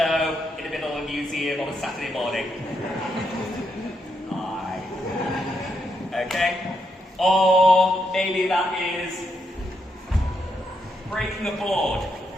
in the middle of a museum on a Saturday morning. Hi. Okay? Or maybe that is breaking a board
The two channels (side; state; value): both; normal; correlation 0.80